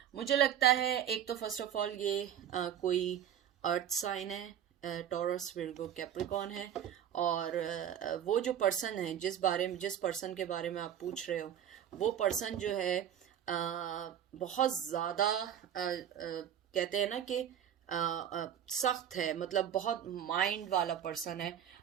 मुझे लगता है एक तो फर्स्ट ऑफ ऑल ये कोई अर्थ साइन है, टॉरस, विर्गो, कैप्रिकॉन है। और वो जो पर्सन है जिस पर्सन के बारे में आप पूछ रहे हो, वो पर्सन जो है बहुत ज़्यादा कहते हैं ना कि सख्त है, मतलब बहुत माइंड वाला पर्सन है।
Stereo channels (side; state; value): left; quieter; 9.7 dB